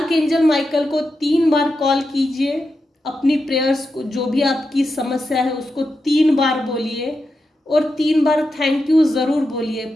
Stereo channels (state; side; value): normal; both; correlation 0.88